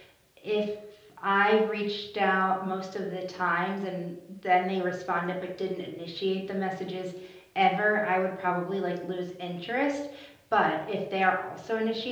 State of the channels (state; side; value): identical; both; correlation 1.00